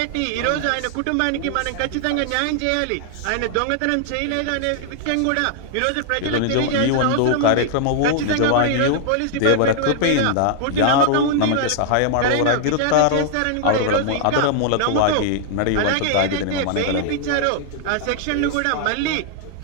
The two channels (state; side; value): different; both; correlation -0.01